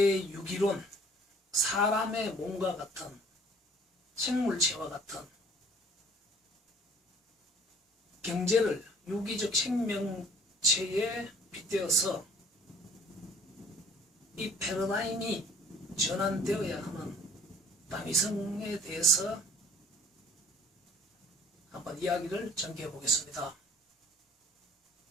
사람의 몸과 같은 생물체와 같은 경제를 유기적 생명체에 빗대어서 이 패러다임이 전환되어야 하는 다미성에 대해서 한번 이야기를 전개해 보겠습니다.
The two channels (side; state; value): both; normal; correlation 0.53